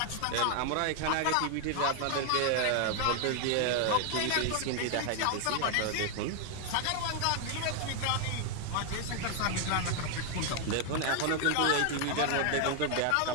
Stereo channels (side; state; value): both; different; correlation 0.00